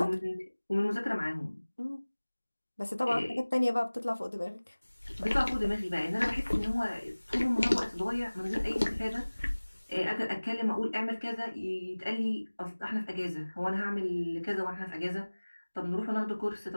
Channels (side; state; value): both; inverted; correlation -1.00